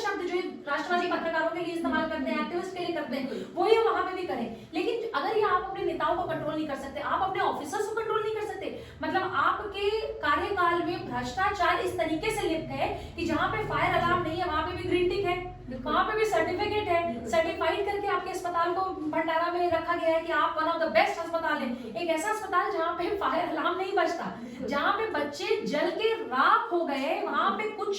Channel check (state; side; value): identical; both; correlation 1.00